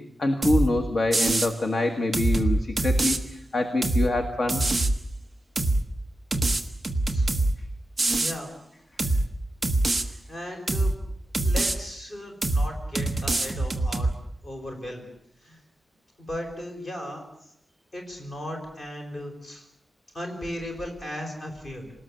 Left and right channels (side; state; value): both; normal; correlation 0.90